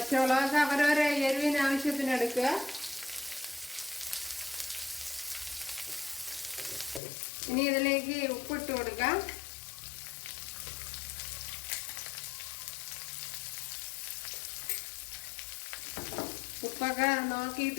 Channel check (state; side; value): drops out; right; at 7.0 s